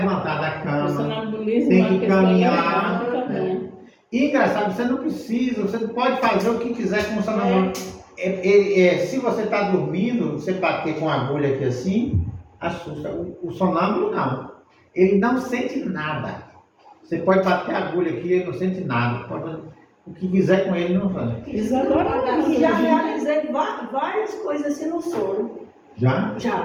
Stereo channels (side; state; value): both; identical; correlation 1.00